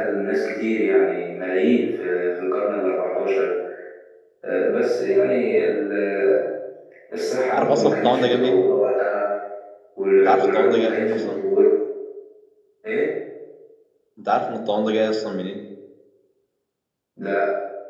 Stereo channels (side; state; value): both; identical; correlation 1.00